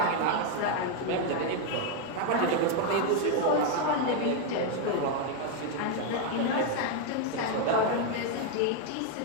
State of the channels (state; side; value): different; both; correlation 0.01